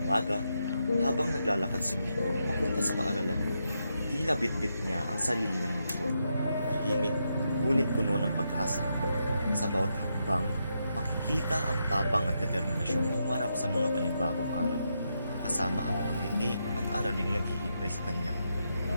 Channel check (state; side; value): inverted; both; correlation -0.83